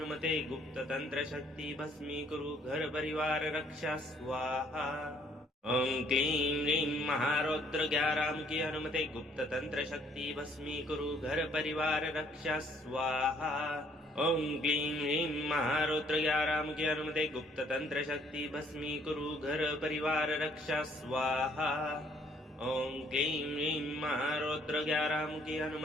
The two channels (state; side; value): normal; both; correlation 0.64